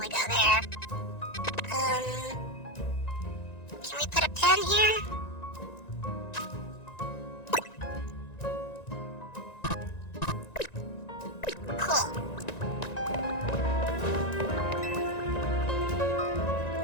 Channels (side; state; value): right; late; 1.9 ms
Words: go there. Can we put a pen here? Cool.